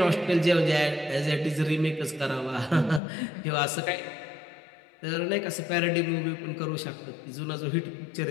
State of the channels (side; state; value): right; drops out; at 3.0 s